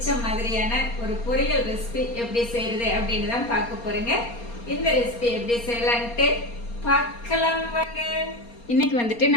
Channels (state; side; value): late; right; 4.3 ms